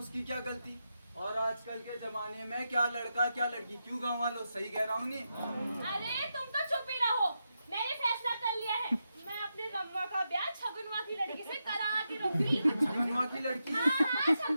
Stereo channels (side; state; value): both; inverted; correlation -0.87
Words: क्या गलती? और आजकल के जमाने में क्या लड़का क्या लड़की, क्यों गाँव वालों? सही कह रहा हूँ नहीं? अरे तुम तो चुप ही रहो। मैंने फैसला कर लिया है, मैं अपने रम्मा का ब्याह छगुनवा की लड़की से करा के रहूंगी। छगुनवा की लड़की? हाँ,